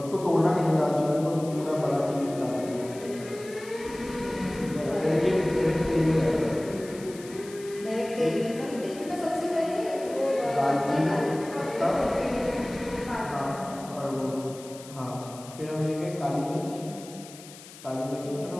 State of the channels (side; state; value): left; noise; hiss, 18 dB below the sound